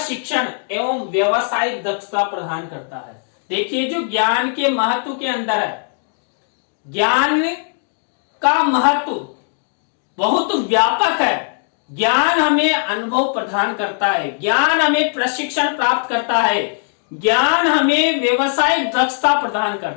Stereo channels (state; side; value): silent; right; digital silence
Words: एवं व्यवसायिक दक्षता प्रदान करता है। देखिए, जो ज्ञान के महत्व के अंदर है, ज्ञान का महत्व बहुत व्यापक है। ज्ञान हमें अनुभव प्रदान करता है, ज्ञान हमें प्रशिक्षण प्राप्त करता है, ज्ञान हमें व्यवसायिक दक्षता प्रदान